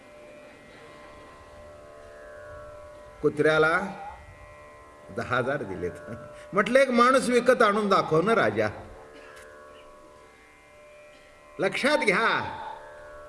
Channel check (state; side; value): identical; both; correlation 1.00